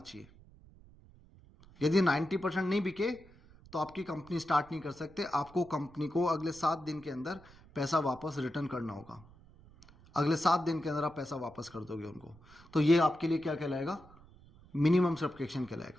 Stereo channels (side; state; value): right; noise; rumble, 24 dB below the sound